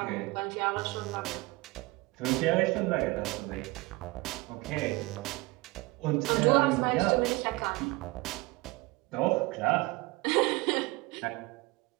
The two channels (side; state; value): left; quieter; 23.1 dB